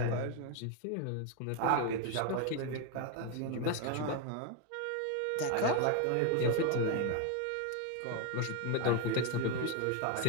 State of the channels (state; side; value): different; both; correlation 0.02